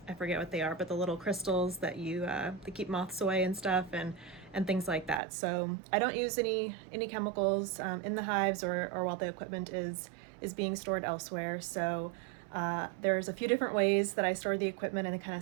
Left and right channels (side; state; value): left; drops out; at 5.2 s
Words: forget what they are, but the little crystals that they keep moths away and stuff, and things like that. So I don't use any chemicals in the hives or while the equipment is being stored elsewhere. So there's a few different ways that I store the equipment and kind